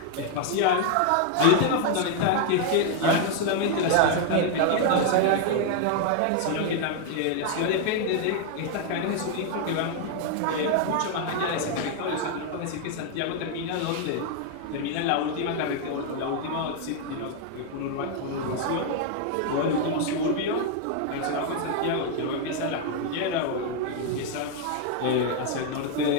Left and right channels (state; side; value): different; both; correlation 0.00